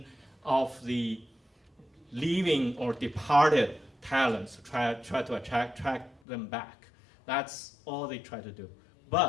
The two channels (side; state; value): right; drops out; at 6.2 s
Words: of the leaving or departed talents, try to attract them back. That's all they try to do.